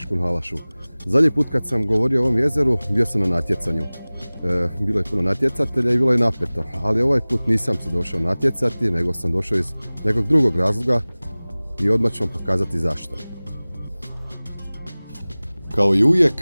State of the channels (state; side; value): inverted; both; correlation -0.99